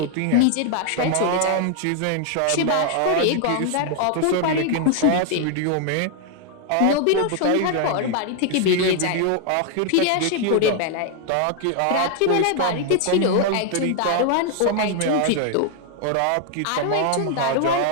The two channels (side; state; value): both; different; correlation 0.00